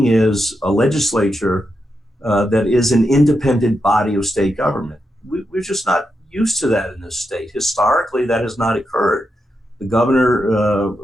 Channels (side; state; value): both; normal; correlation 0.86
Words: is a legislature that is an independent body of state government. We're just not used to that in this state. Historically, that has not occurred. The governor,